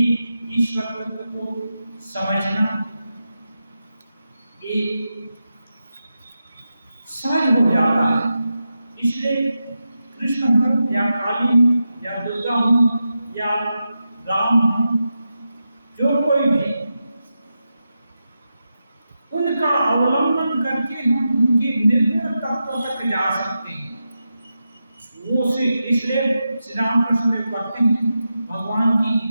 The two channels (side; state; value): both; inverted; correlation -0.90